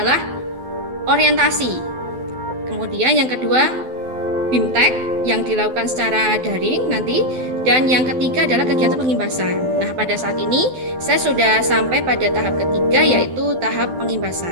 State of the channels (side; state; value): left; late; 12 ms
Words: orientasi. Kemudian yang kedua BIMTEK yang dilakukan secara daring nanti, dan yang ketiga adalah kegiatan pengimbasan. Nah, pada saat ini saya sudah sampai pada tahap ketiga, yaitu tahap